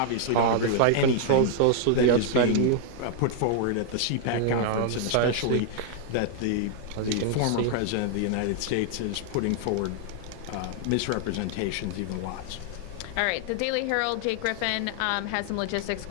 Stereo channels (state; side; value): different; both; correlation 0.00